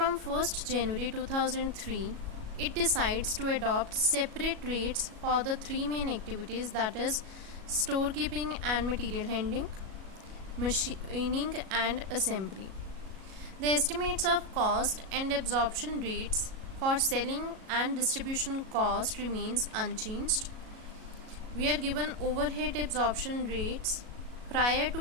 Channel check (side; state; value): left; late; 37 ms